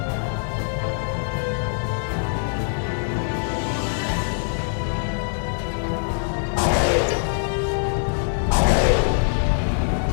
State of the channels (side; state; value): right; silent; digital silence